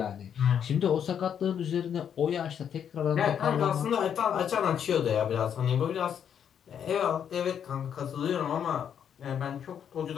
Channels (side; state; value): right; quieter; 8.5 dB